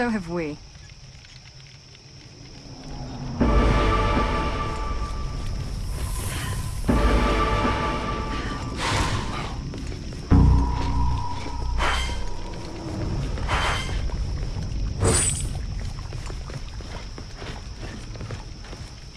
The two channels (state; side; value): identical; both; correlation 1.00